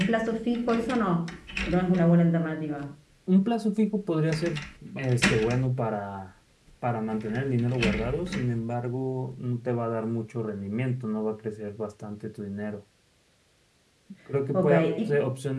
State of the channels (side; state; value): both; identical; correlation 1.00